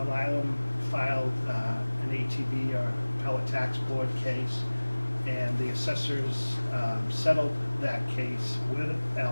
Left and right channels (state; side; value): inverted; both; correlation -1.00